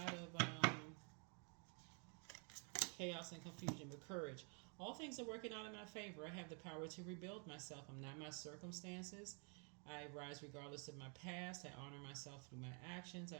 chaos and confusion, but courage. All things are working out in my favor. I have the power to rebuild myself. I'm not my circumstances. I rise regardless of my past. I honor myself through my actions. I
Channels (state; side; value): quieter; left; 37.7 dB